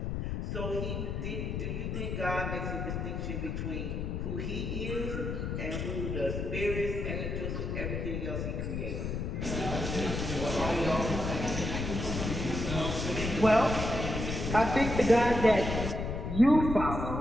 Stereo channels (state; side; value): noise; left; rumble, 3 dB below the sound